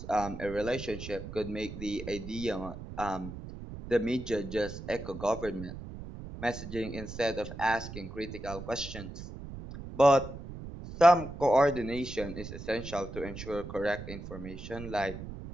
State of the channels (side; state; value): right; noise; rumble, 11 dB below the sound